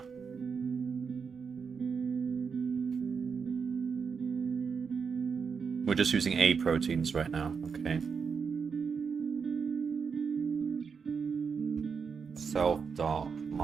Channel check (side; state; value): left; quieter; 5.9 dB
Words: We're just using A proteins right now, okay.